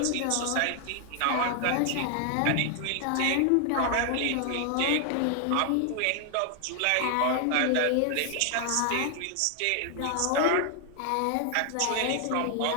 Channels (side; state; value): both; different; correlation 0.00